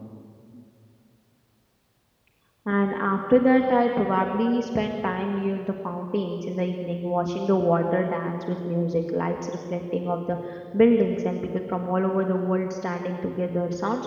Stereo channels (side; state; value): both; identical; correlation 1.00